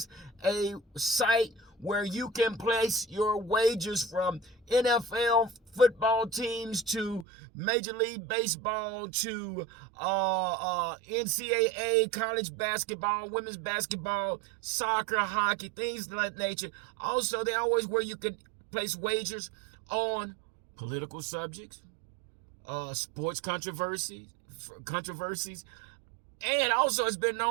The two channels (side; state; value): left; drops out; at 7.2 s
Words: a site where you can place your wagers from NFL football teams to Major League Baseball to NCAA, college basketball, women's basketball, soccer, hockey, things of that nature. Also, they always where you can place wagers on political subjects, sports controversies, and also it's been